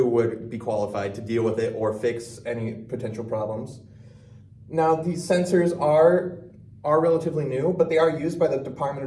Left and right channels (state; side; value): identical; both; correlation 1.00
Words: would be qualified to deal with it or fix any potential problems. Now, these sensors are relatively new, but they are used by the Department